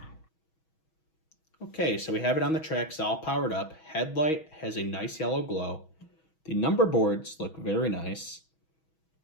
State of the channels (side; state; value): right; late; 6.3 ms